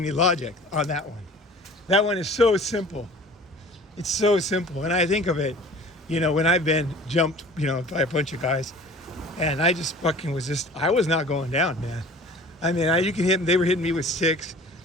logic on that one. That one is so simple. It's so simple. And I think of it, when I've been jumped, by a bunch of guys, and I just fucking I was not going down, man. I mean, you can hit them. They were hitting me with sticks,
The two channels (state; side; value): normal; both; correlation 0.45